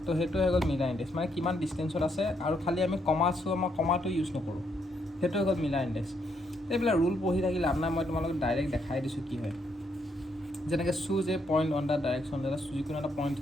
তো সেইটো হৈ গ'ল মিলাৰ ইণ্ডেক্স। মানে কিমান ডিষ্টেঞ্চত আছে আৰু খালি আমি আমাৰ কমাটো ইউজ নকৰোঁ, সেইটো হৈ গ'ল মিলাৰ ইণ্ডেক্স। এইবিলাক ৰুল পঢ়ি থাকিলে লাভ নাই, মই তোমালোকক ডাইৰেক্ট দেখাই দিছোঁ কি হয়। যেনেকৈ choose a point on the direction, এটা যিকোনো এটা পইণ্ট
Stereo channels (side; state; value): both; normal; correlation 0.75